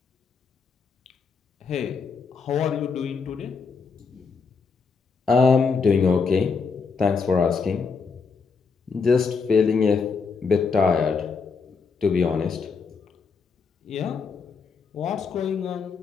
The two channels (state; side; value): quieter; right; 5.2 dB